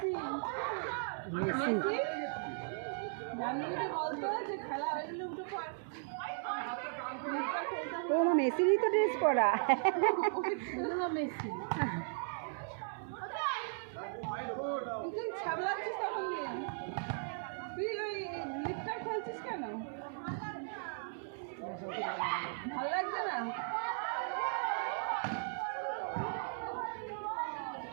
Messi ও মা মেসিরই তো ড্রেস পরা। মেসি কেন ভালো লাগছে না?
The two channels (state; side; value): silent; left; digital silence